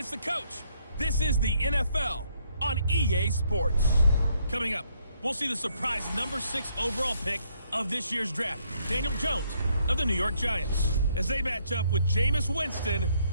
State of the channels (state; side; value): inverted; both; correlation -0.71